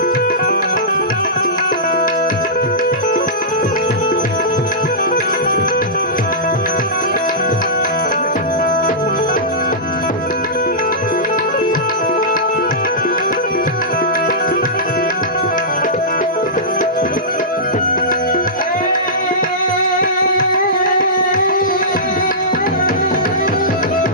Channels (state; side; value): normal; both; correlation -0.16